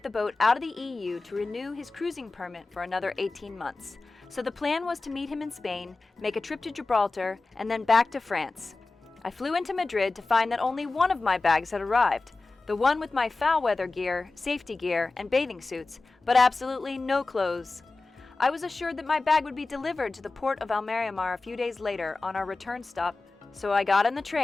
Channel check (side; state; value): right; quieter; 3.5 dB